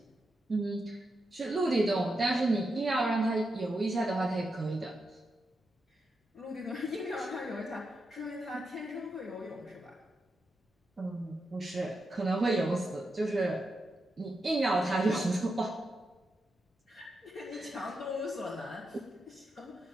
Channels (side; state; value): both; normal; correlation 0.86